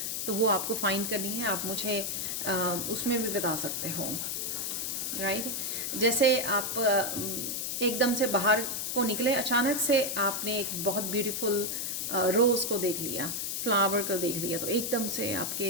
तो वो आपको फाइंड करनी है। आप मुझे उसमें भी बता सकते हो, राइट। जैसे आप एकदम से बाहर को निकले, अचानक से आपने एक बहुत ब्यूटीफुल रोज़ को देख लिया, फ्लावर को देख लिया, तो एकदम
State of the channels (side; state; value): left; noise; hiss, 2 dB below the sound